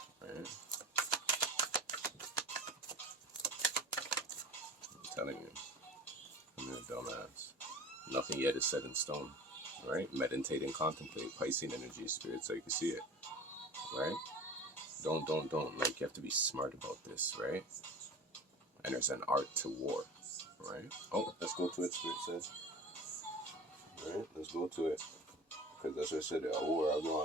Right? I'm telling you, I'm a dumbass. Nothing yet is set in stone, right? Meditate and contemplate Piscean energy, spirit, so you can see it, right? Don't. Like, you have to be smart about this, right? And there's an art to war, right? Oh, let's go to it, spirit says. Right? Let's go to it. Because that's what I said, a war I go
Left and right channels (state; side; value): normal; both; correlation 0.37